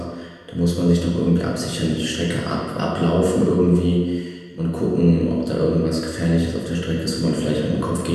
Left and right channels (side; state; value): both; identical; correlation 1.00